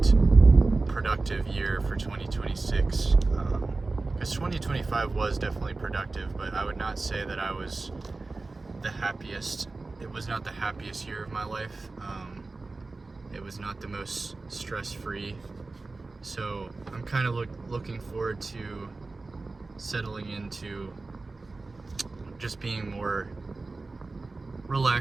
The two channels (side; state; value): left; quieter; 3.5 dB